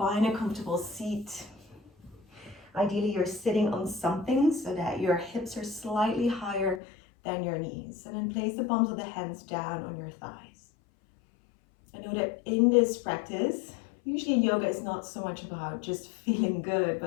a comfortable seat. Ideally, you're sitting on something so that your hips are slightly higher than your knees. And then place the palms of the hands down on your thighs. I know that in this practice, usually yoga is not so much about just feeling good,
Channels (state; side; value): drops out; right; at 6.8 s